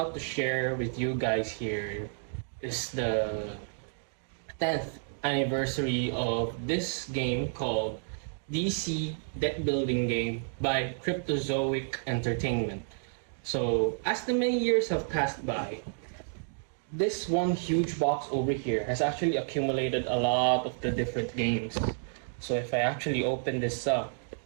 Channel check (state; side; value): silent; left; digital silence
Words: to share with you guys here is the 10th anniversary of this game called DC Deck Building Game by Cryptozoic Entertainment. So, as the many years have passed by, this one huge box over here has actually accumulated a lot of the different games. So, if I actually open this up,